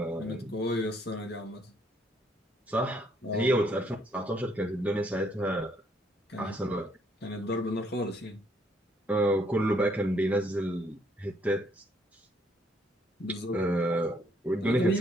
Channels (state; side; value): normal; both; correlation 0.68